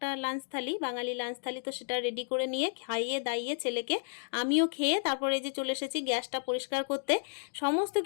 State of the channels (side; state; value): right; silent; digital silence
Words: লাঞ্চ থালি, বাঙালি লাঞ্চ থালি, তো সেটা রেডি করে নিয়ে খাইয়ে দাইয়ে ছেলেকে আমিও খেয়ে তারপরে এই যে চলে এসেছি গ্যাসটা পরিষ্কার করতে। সমস্ত